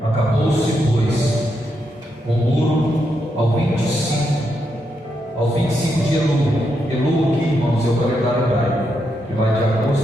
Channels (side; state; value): both; normal; correlation 0.81